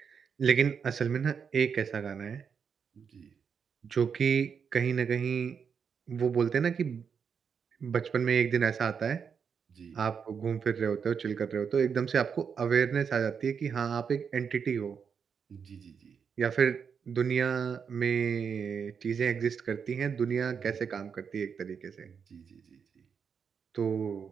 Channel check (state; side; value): quieter; left; 6.6 dB